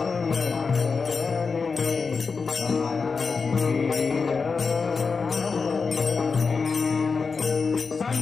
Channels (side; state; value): right; quieter; 4.9 dB